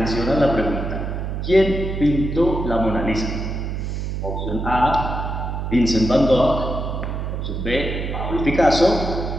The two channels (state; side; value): noise; right; hum, 3 dB below the sound